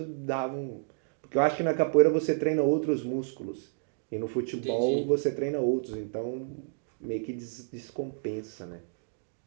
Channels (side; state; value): left; silent; digital silence